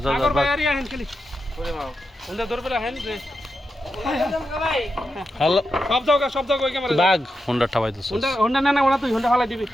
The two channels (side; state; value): both; normal; correlation 0.87